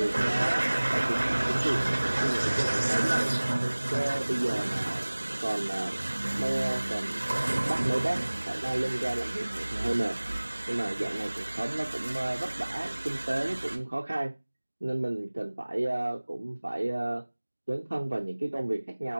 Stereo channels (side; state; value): both; inverted; correlation -1.00